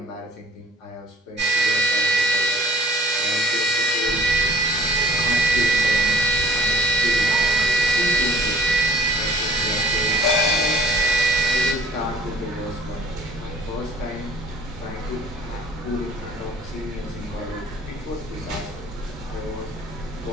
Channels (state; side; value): normal; both; correlation 0.53